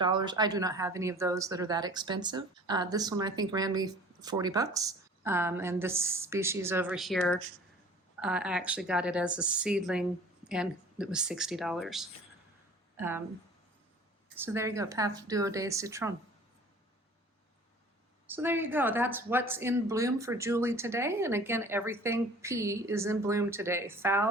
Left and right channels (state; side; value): normal; both; correlation 0.46